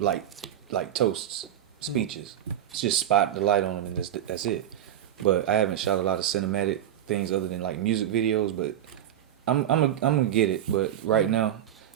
toasts, speeches. It's just spot the light on them, and that's it. But I haven't shot a lot of cinematic things other than like music videos. But I'm gonna get it. But right now,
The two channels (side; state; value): left; quieter; 11.0 dB